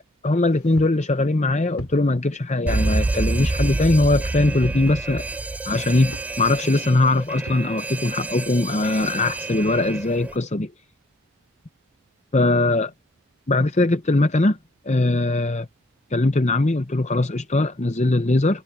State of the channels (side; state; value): both; normal; correlation 0.65